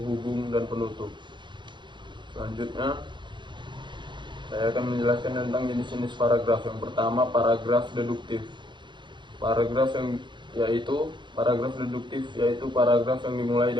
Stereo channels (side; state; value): left; late; 0.23 ms